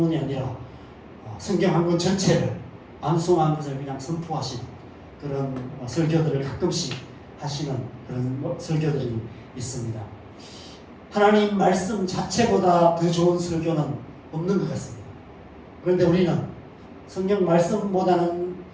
아니라 성경 한 권 전체를 암송한 것을 그냥 선포하시는 그런 설교들을 가끔씩 하시는 그런 설교들이 있습니다. 하나님 말씀 자체보다 더 좋은 설교는 없는 것 같습니다. 그런데 우리는 성경 말씀보다는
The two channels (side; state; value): both; identical; correlation 1.00